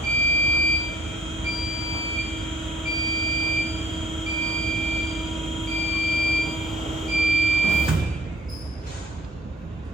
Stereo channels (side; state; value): both; normal; correlation 0.57